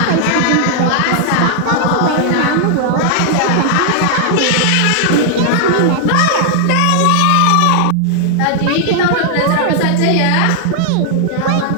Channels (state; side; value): different; both; correlation -0.01